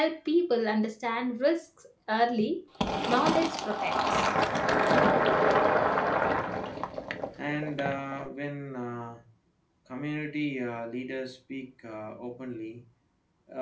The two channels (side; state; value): both; identical; correlation 1.00